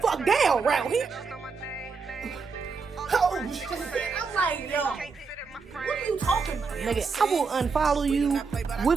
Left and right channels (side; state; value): left; quieter; 4.9 dB